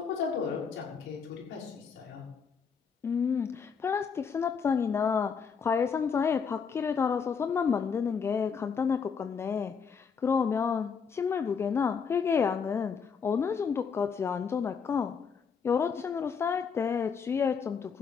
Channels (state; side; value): quieter; right; 6.2 dB